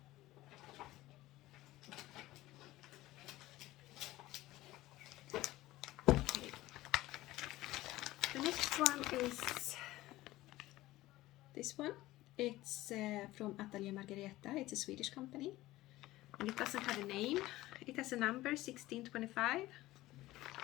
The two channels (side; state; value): right; quieter; 17.1 dB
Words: the next one is this one. It's from Atelier Margareta. It's a Swedish company. And it doesn't have a name. It has a number, 1625.